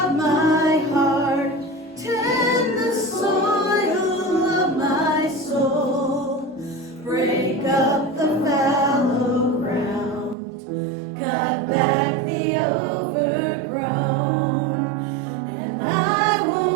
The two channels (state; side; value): drops out; left; at 10.4 s